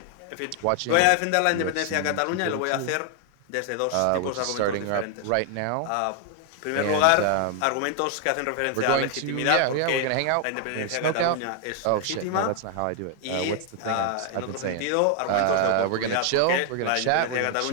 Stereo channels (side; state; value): both; different; correlation 0.00